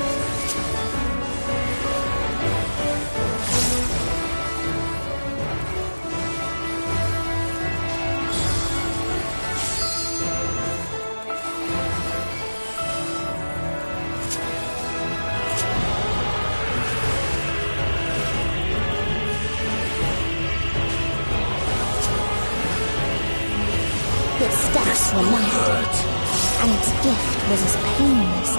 Its steps were light, and its gift was as painless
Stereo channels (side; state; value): both; inverted; correlation -1.00